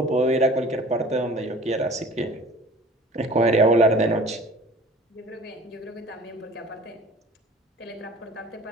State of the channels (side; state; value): both; normal; correlation 0.46